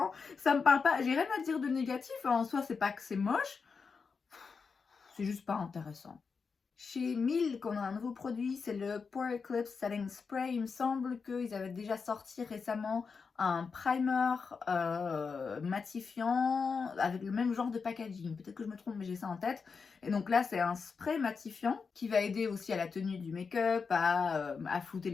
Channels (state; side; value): quieter; right; 5.2 dB